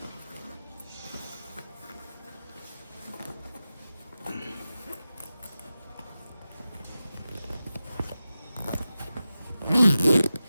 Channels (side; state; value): both; inverted; correlation -0.94